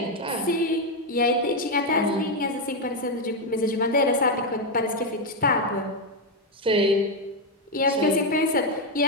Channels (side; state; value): both; normal; correlation 0.04